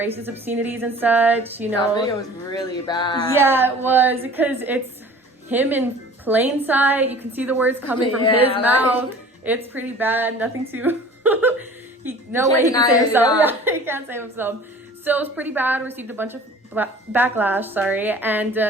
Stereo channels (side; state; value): both; normal; correlation 0.45